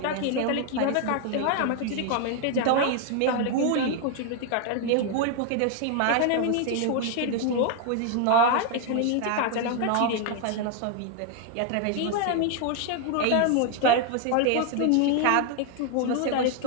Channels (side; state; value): both; different; correlation 0.01